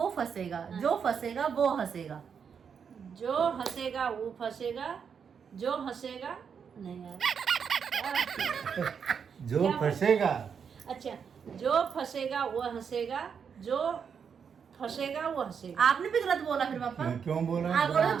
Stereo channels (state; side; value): quieter; left; 6.8 dB